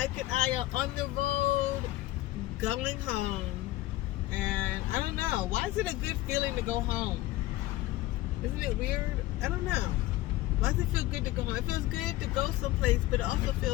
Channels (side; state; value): right; quieter; 16.8 dB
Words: and I are on the road going home, and I don't know, why is it a good feeling to go home? Isn't it weird? I don't know. Why does it feel good to go home? It feels good to go someplace, but it also